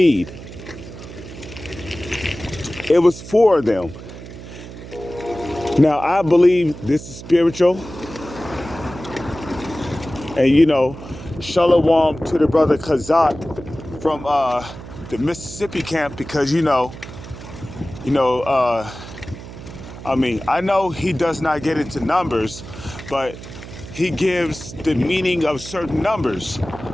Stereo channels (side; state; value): right; noise; hum, 13 dB below the sound